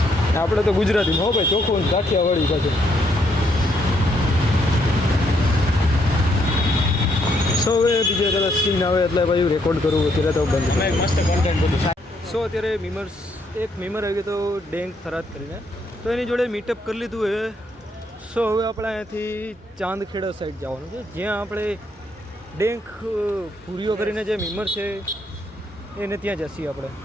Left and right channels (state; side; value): normal; both; correlation 0.73